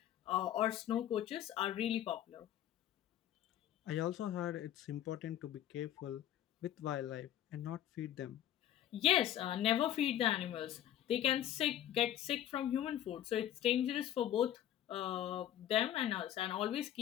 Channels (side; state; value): right; quieter; 11.7 dB